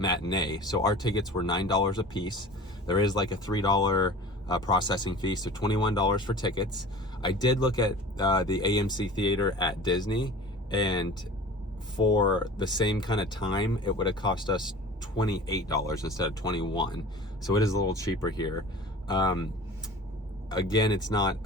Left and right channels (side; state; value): both; normal; correlation 0.40